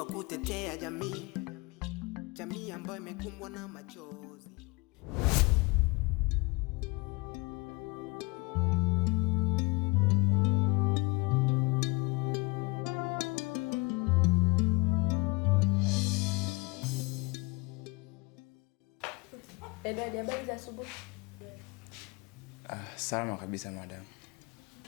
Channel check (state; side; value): quieter; right; 25.7 dB